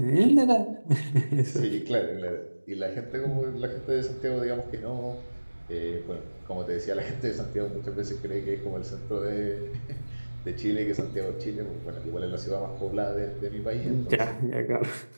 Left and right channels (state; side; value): inverted; both; correlation -1.00